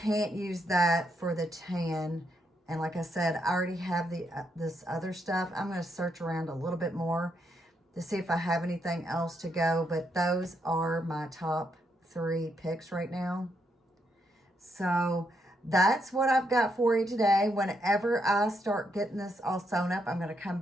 use that for the tan. And like I said, I already have the this other stuff. I'm going to search around a little bit more to see if I have anything else to go. But those are my top 3 picks right now. So that's what I've got for you today. Whenever I start getting this all sewn up, I'm going to come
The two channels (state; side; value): normal; both; correlation 0.78